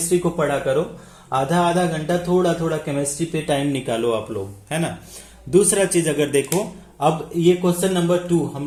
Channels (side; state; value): both; identical; correlation 1.00